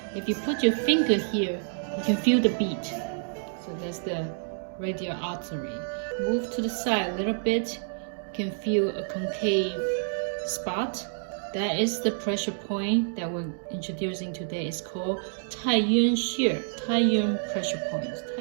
If you put your finger here, you can feel the beat. So that's the radial artery. Move to the side a little bit, you can feel a concave spot. That is the pressure point that we're introducing today. It's called Taiyuan pressure point.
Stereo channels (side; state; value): left; silent; digital silence